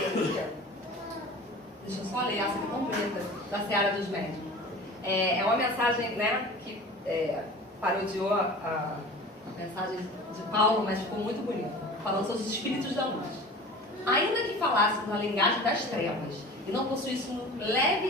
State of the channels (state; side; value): normal; both; correlation 0.39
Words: aqui, deixa eu só ler essa aqui completa, da Seara dos Médicos. É uma mensagem, né, que parodiou a mensagem de Paulo, mas ficou muito bonita, falando sobre os espíritos da luz. Ainda que falássemos a linguagem das trevas e não possuíssemos um